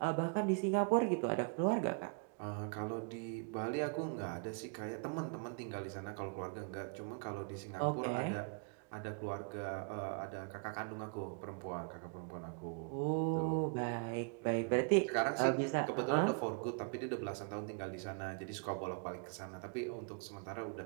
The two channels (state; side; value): quieter; left; 37.7 dB